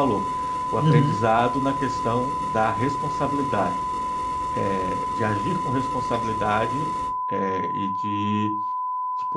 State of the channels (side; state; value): both; identical; correlation 1.00